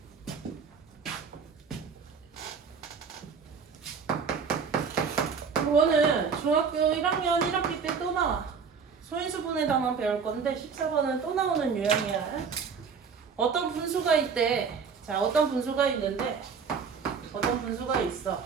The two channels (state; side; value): quieter; left; 5.9 dB